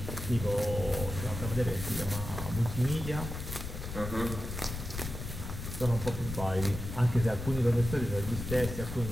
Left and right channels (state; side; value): noise; left; rumble, 7 dB below the sound